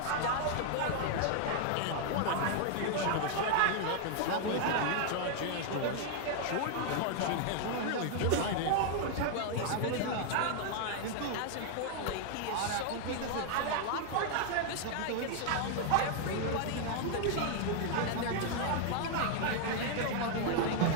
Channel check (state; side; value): different; both; correlation 0.00